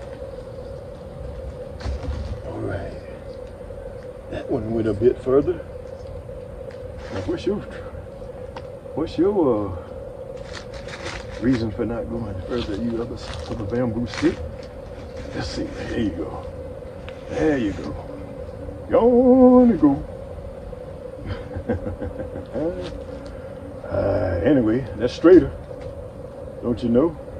One went a bit further. Now, what's your reason for not going further? You other bamboo stick? Let's see. There you go. There you go. Gonna go. Anyway, that's straighter. Don't you know?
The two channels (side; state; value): both; identical; correlation 1.00